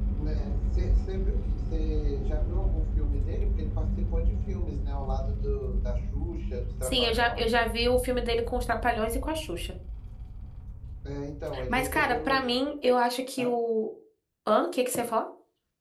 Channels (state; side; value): identical; both; correlation 1.00